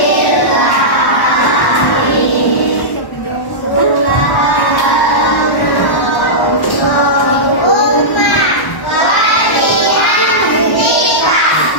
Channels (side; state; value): right; late; 1.1 ms